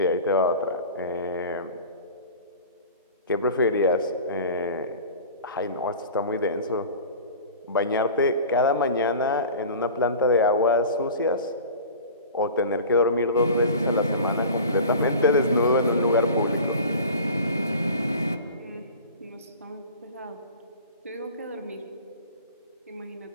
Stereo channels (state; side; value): inverted; both; correlation -0.39